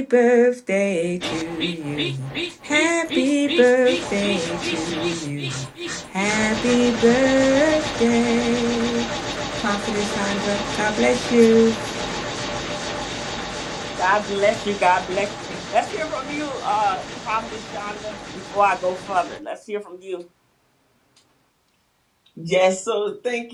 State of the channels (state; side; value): identical; both; correlation 1.00